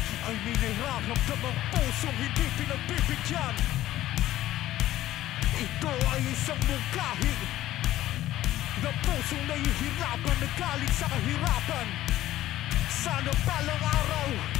ay may nararamdam ang pusong hindi pinagbibigyan. Ito ay isang mungkahi na pusong nahihirapan na galing sa kahirapan. Sana balang araw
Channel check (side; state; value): right; quieter; 14.4 dB